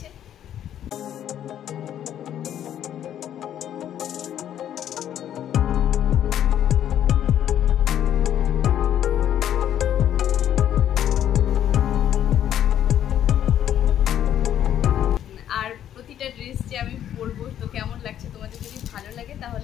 আর প্রতিটা ড্রেস যে আমি পরবো তো কেমন লাগছে, তোমাদের যদি ভালো লাগে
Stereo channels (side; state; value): right; quieter; 10.6 dB